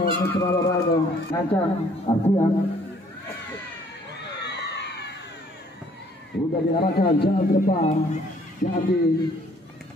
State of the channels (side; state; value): both; normal; correlation 0.60